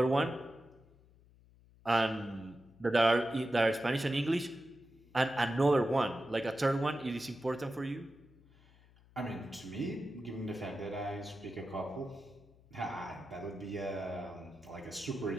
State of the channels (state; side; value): noise; left; hum, 27 dB below the sound